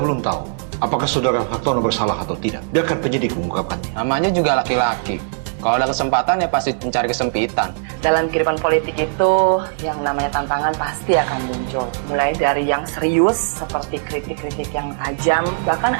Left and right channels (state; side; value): silent; left; 60 dB below the other